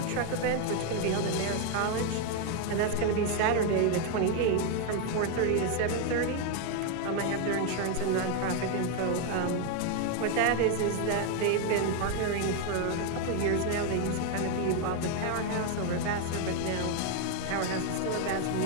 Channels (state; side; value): different; both; correlation 0.01